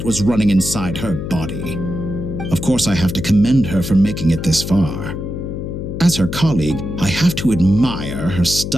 was running inside her body. Of course, I have to commend her for making it this far. As her colleague, I have to admire her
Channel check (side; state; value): left; noise; hum, 6 dB below the sound